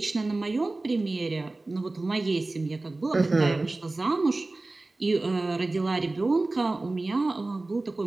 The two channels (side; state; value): left; quieter; 3.1 dB